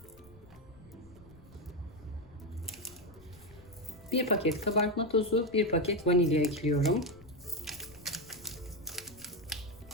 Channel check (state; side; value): noise; left; rumble, 23 dB below the sound